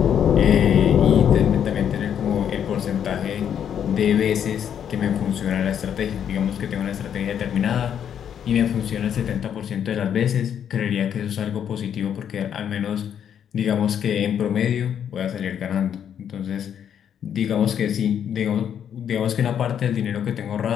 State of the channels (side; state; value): right; quieter; 8.9 dB